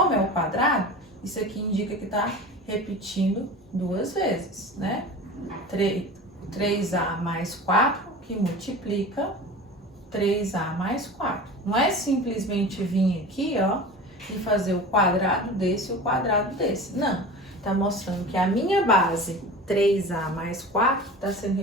é o quadrado, isso aqui indica que está repetindo 2 vezes, né? 3a mais 4, que multiplica 3a mais 4. Não é simplesmente vir aqui, ó, e fazer o quadrado desse e o quadrado desse. Não, tá mostrando que a minha base 3a mais 4 está sendo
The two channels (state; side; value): normal; both; correlation 0.34